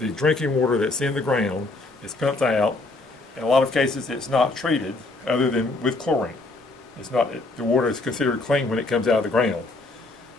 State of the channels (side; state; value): right; quieter; 3.2 dB